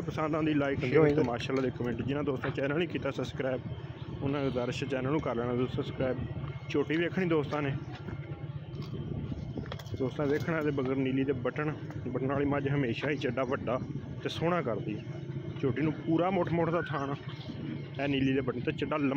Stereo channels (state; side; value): identical; both; correlation 1.00